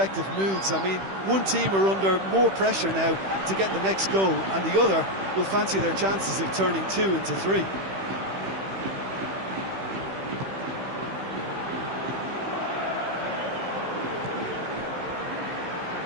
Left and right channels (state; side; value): late; left; 15 ms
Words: moods. I mean, one team are under more pressure now to get the next goal, and the other will fancy their chances of turning 2 into 3.